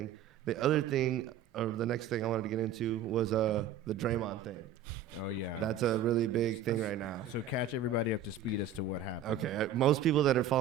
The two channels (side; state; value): left; quieter; 7.6 dB